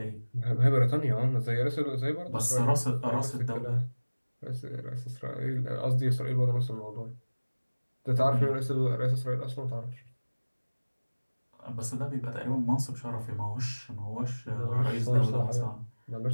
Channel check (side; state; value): both; inverted; correlation -1.00